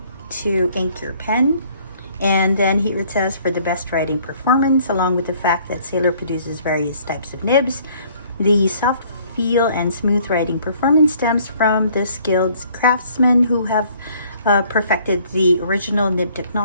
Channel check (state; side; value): inverted; both; correlation -0.60